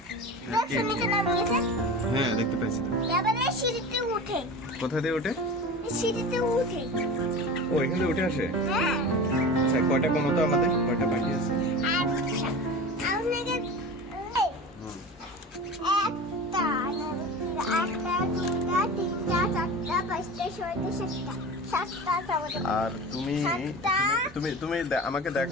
হ্যাঁ দেখতে পাইছি। কোথা দিয়ে ওঠে? ও এখান থেকে উঠে আসে। আচ্ছা কয়টা কমো তো, আমাদের কয়টা পাখি আছে? আর তুমি তুমি তুমি আমাকে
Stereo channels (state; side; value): normal; both; correlation 0.32